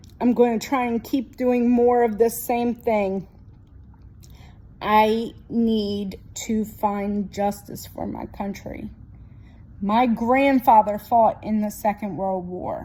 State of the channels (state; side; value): identical; both; correlation 1.00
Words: I'm going to try and keep doing more of this same thing. I need to find justice for my country. My grandfather fought in the Second World